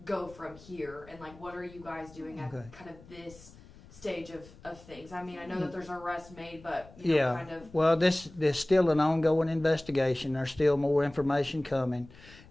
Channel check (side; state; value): left; noise; rumble, 22 dB below the sound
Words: go from here? And like, what are you guys doing at kind of this stage of things? I mean, I know that there's an arrest made, but kind of. Well, there's still an ongoing investigation. There's still more information coming,